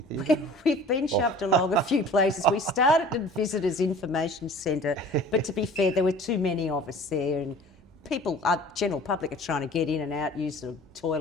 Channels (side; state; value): both; normal; correlation 0.45